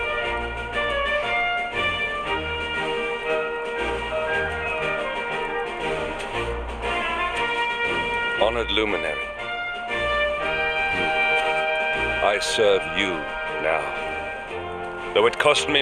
Honored Luminary, I serve you now. Though it cost me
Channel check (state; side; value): identical; both; correlation 1.00